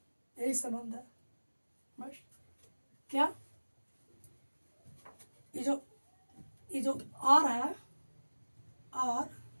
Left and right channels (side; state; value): both; inverted; correlation -1.00